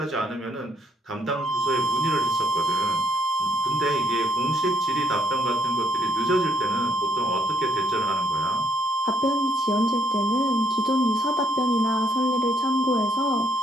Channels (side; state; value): both; normal; correlation 0.71